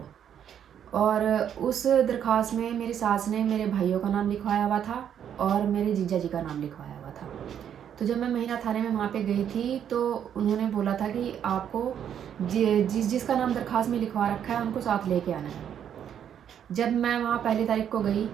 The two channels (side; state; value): left; quieter; 9.1 dB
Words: और उस दरख्वास्त में मेरी सास ने मेरे भाइयों का नाम लिखवाया हुआ था और मेरे जीजा जी का नाम लिखवाया हुआ था। तो जब मैं महिला थाने में वहाँ पे गई थी, तो उन्होंने बोला था कि आपको जिसका नाम दरख्वास्त में लिखवा रखा है उनको साथ लेके आना है। जब मैं वहाँ पहली तारीख को गई,